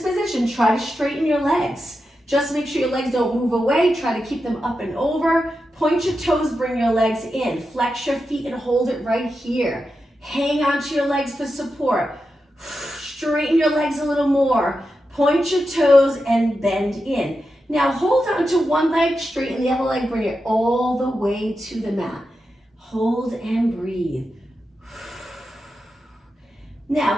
position, try to straighten your legs. Just make sure your legs don't move away. Try to keep them up and over. Point your toes, bring your legs in. Flex your feet and hold it right here. Hang on to your legs for support. Straighten your legs a little more. Point your toes and bend in. Now hold on to one leg, straighten the other leg, bring it all the way to the mat. Hold and breathe. Now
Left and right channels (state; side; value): normal; both; correlation 0.89